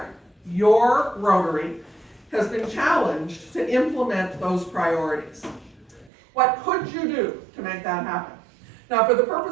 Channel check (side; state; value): left; drops out; at 6.1 s